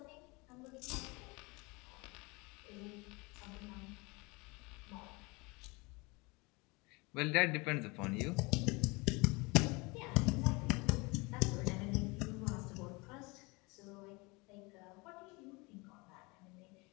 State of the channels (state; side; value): quieter; right; 26.5 dB